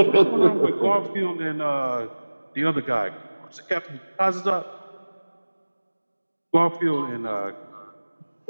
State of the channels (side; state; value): both; inverted; correlation -1.00